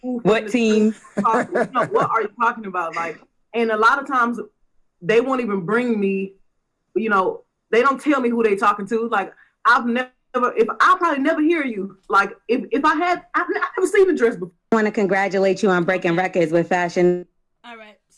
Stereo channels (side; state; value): both; identical; correlation 1.00